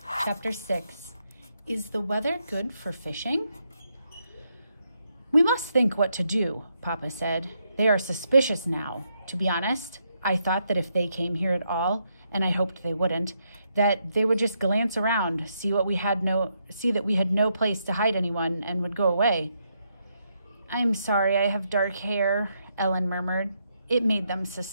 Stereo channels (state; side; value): inverted; both; correlation -0.79